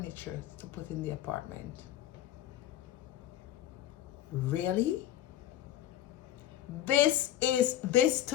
to put in the apartment. Really? This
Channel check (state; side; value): quieter; right; 12.4 dB